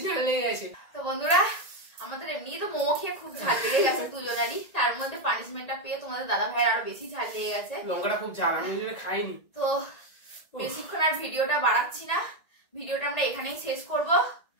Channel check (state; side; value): late; right; 1.8 ms